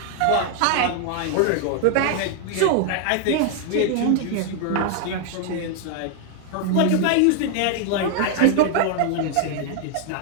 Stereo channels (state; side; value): different; both; correlation 0.00